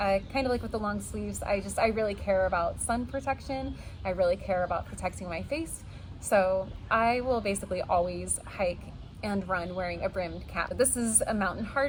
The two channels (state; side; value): identical; both; correlation 1.00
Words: of like with the long sleeves, I really care about sun protection. I really care about protecting my face. So I will basically always hike and run wearing a brimmed cap. This is a Mountain